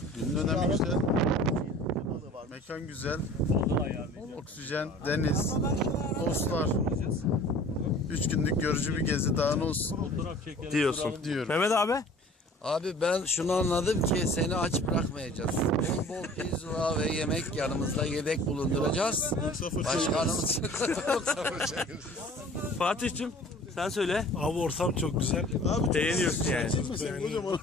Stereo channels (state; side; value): normal; both; correlation 0.47